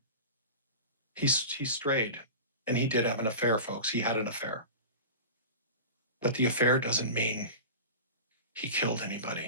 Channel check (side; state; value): both; inverted; correlation -0.31